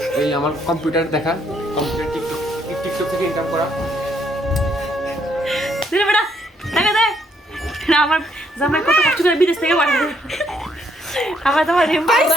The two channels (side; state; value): both; normal; correlation 0.71